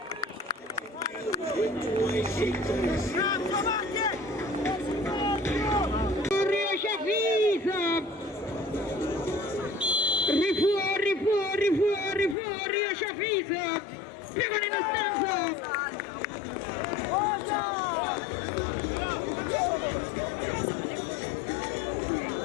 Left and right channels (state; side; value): drops out; right; at 12.4 s